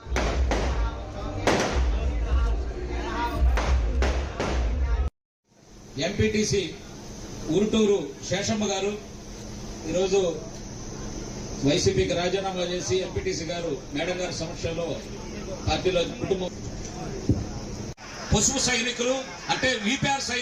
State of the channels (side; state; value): both; identical; correlation 1.00